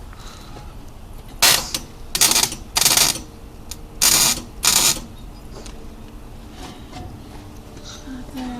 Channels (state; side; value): identical; both; correlation 1.00